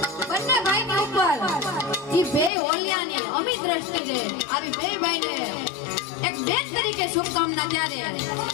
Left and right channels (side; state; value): right; drops out; at 2.5 s